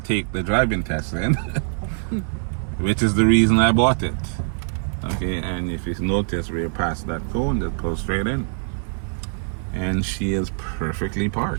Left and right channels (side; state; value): left; silent; 59 dB below the other